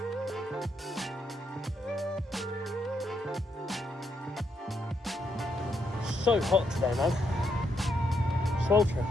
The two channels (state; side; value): normal; both; correlation 0.78